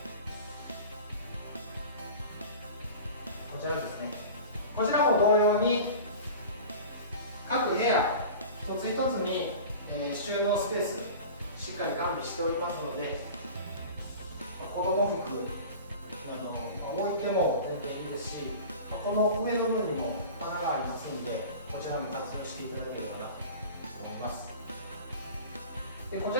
こちらですね。こちらも同様に各部屋一つ一つに、収納スペースしっかり完備しておりますので、子供服置いても全然いいですし、この上の部分にも穴がありますので、こちらも活用していただければなと思います。でこち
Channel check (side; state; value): both; inverted; correlation -0.36